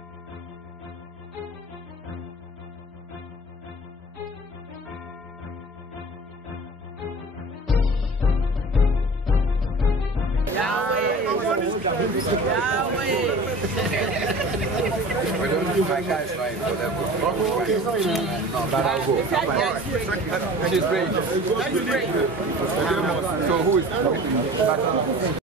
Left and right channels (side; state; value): both; normal; correlation 0.40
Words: My guys right for them. No, but I'll go. She's great. So who is